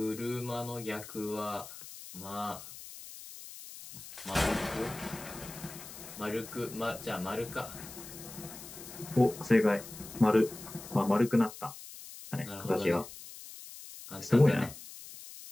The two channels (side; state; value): left; noise; hiss, 14 dB below the sound